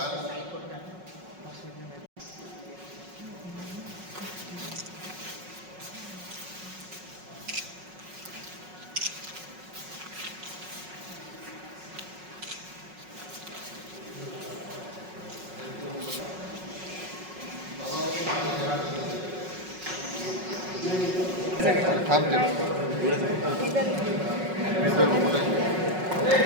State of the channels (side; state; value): left; late; 5.4 ms